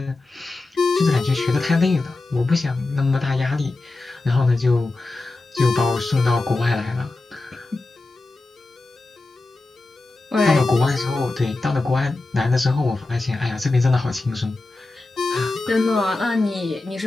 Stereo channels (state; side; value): quieter; right; 3.2 dB